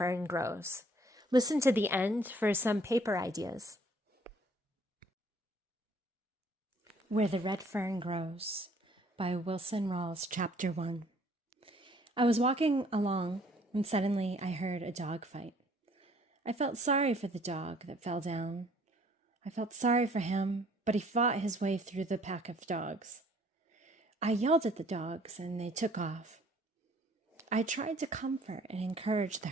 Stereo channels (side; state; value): both; normal; correlation 0.59